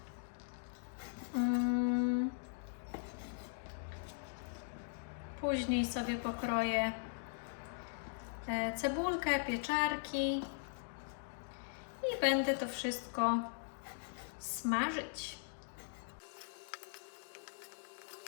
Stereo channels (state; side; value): silent; right; digital silence